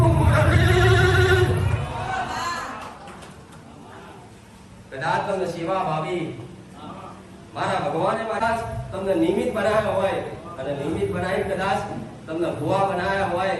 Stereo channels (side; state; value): both; identical; correlation 1.00